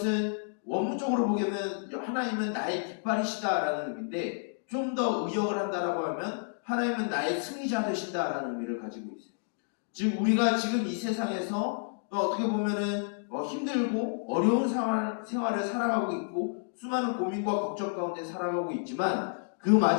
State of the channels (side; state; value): right; silent; digital silence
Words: 원문적으로 보면 하나님은 나의 깃발이시다라는 의미인데 좀 더 의역을 한다라고 하면 하나님은 나의 승리자 되신다라는 의미를 가지고 있어요. 즉 우리가 지금 이 세상에서 어떻게 보면은 힘들고 어려운 생활을 살아가고 있고 수많은 고민과 걱정 가운데 살아가고 있지만 그